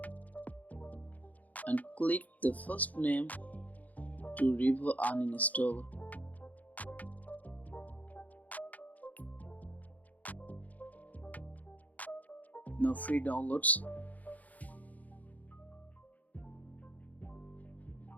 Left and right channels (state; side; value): late; right; 0.076 ms